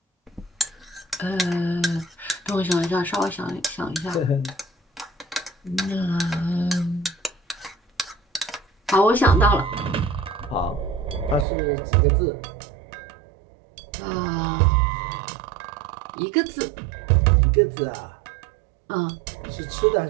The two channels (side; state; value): left; drops out; at 11.5 s